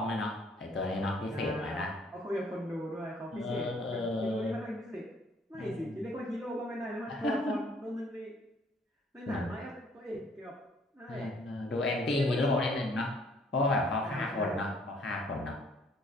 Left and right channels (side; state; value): both; normal; correlation 0.62